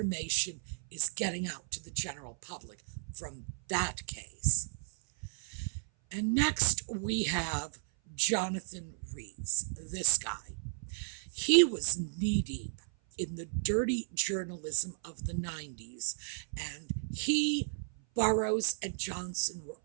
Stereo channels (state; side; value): silent; left; 55 dB below the other